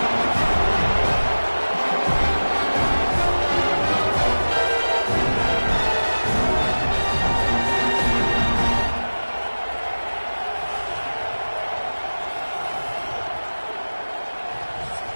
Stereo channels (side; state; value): both; inverted; correlation -1.00